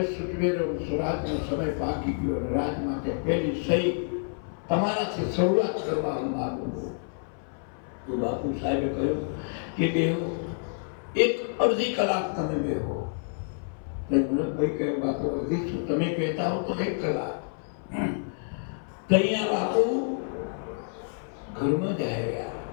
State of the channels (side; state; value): right; silent; 58 dB below the other